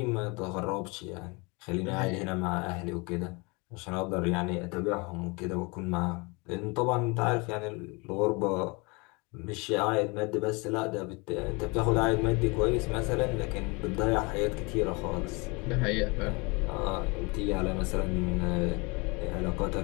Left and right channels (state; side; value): quieter; right; 28.2 dB